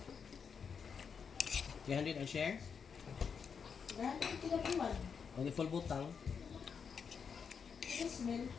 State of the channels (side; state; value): right; quieter; 6.4 dB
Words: 300 ang share? Dahil ang kinabuhan. O di full butang? Smell.